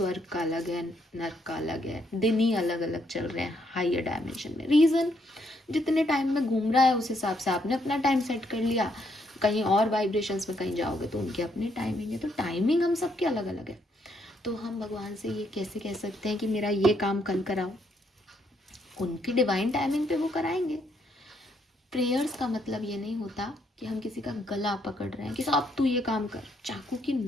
का अलग है, नर्क का अलग है, दिन ही अलग अलग चल रहे हैं हायर डायमेंशन में। रीज़न, जितने टाइम में घूम रहा है उस हिसाब से आपने अपना टाइम सेट कर लिया। कहीं और वाइब्रेशंस में कहीं जाओगे तो उनके अपने टाइमिंग है, तो टाइमिंग हम सबके अलग अलग है। तो हम भगवान से ये कैसे कह सकते हैं कि मेरा ये काम कल कराओ, उनकी डिवाइन टाइमिंग पे वो कराएंगे। प्रेयर्स का मतलब ये नहीं होता कि हम किसी का गला पकड़ रहे हैं कि साहब तू ये काम कर। चाकू की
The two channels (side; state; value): both; normal; correlation 0.74